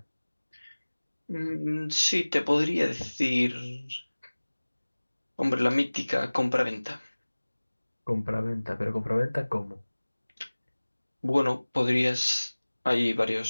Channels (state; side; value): inverted; both; correlation -1.00